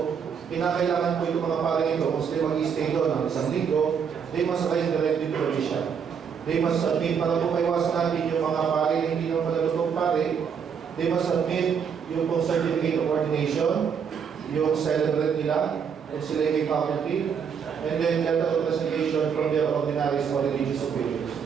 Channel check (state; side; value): quieter; left; 7.0 dB